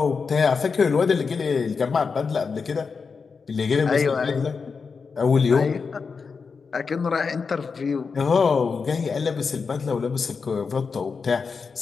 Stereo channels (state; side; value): quieter; right; 5.2 dB